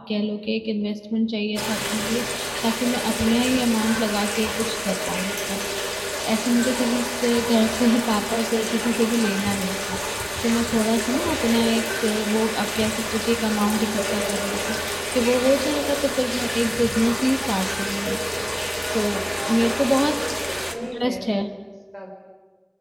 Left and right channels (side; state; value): both; identical; correlation 1.00